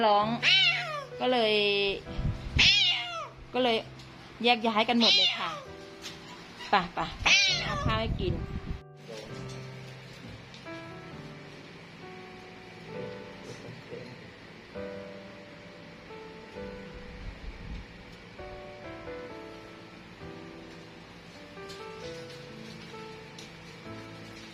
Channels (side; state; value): both; identical; correlation 1.00